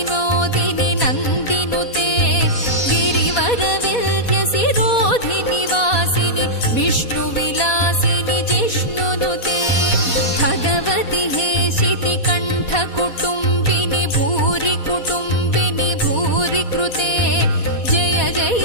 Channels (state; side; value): late; right; 4.2 ms